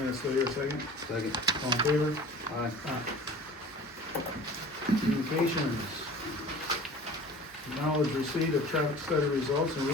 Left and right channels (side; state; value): both; normal; correlation 0.42